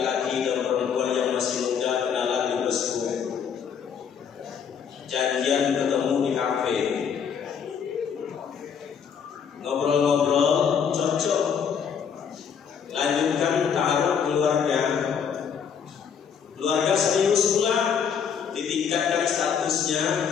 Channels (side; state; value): right; quieter; 7.2 dB